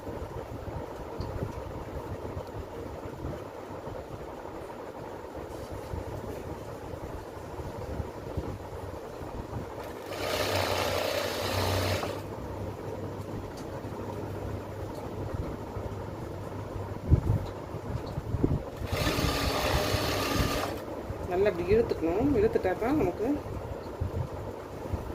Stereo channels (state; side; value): identical; both; correlation 1.00